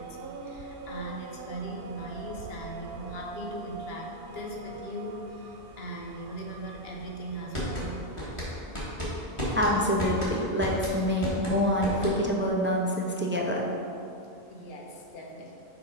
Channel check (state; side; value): normal; both; correlation 0.03